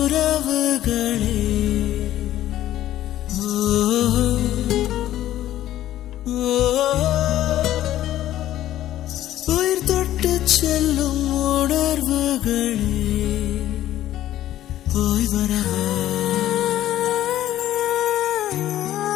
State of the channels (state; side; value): quieter; right; 13.2 dB